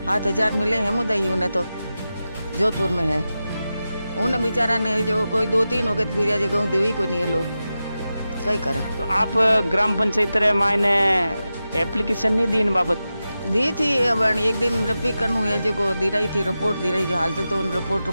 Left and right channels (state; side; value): inverted; both; correlation -0.92